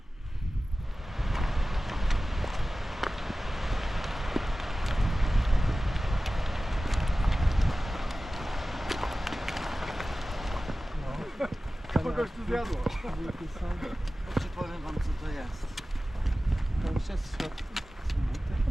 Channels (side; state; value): both; normal; correlation 0.96